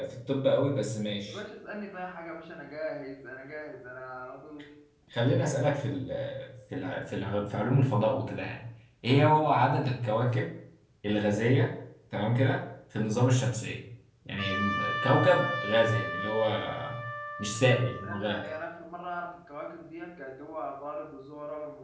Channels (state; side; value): identical; both; correlation 1.00